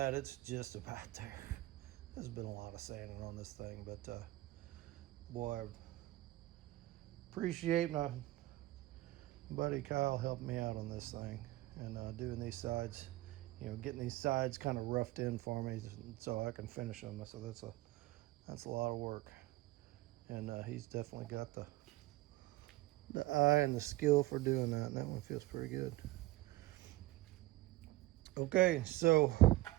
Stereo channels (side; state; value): left; quieter; 18.1 dB